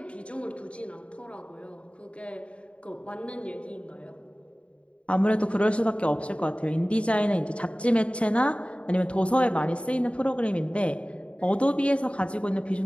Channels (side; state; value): right; late; 0.060 ms